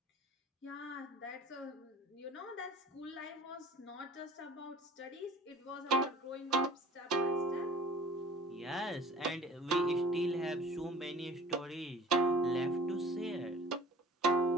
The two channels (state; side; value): normal; both; correlation 0.47